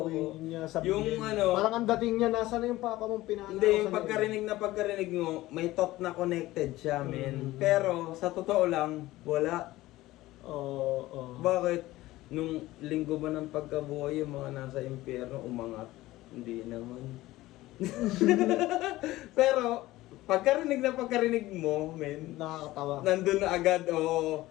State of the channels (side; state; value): right; quieter; 17.3 dB